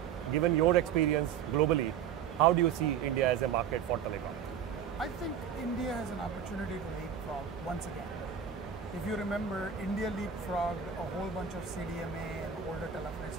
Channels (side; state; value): left; quieter; 8.0 dB